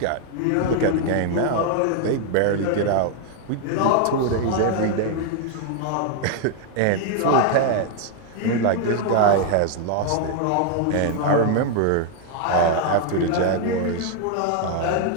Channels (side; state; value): both; different; correlation 0.00